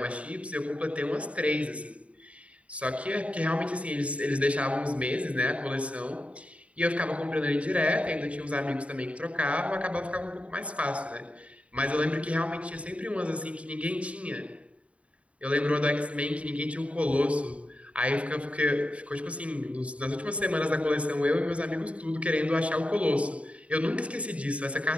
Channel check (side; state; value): left; late; 0.064 ms